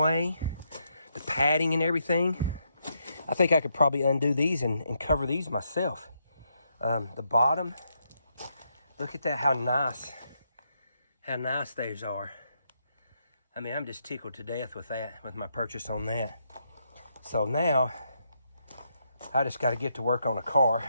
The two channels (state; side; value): inverted; both; correlation -0.79